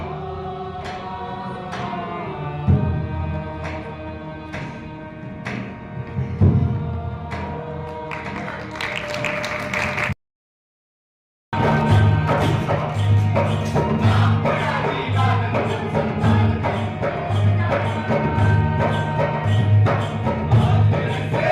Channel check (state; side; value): identical; both; correlation 1.00